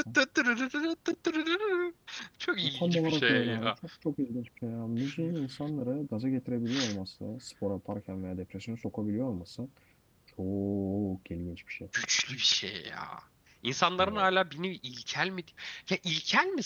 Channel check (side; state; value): both; identical; correlation 1.00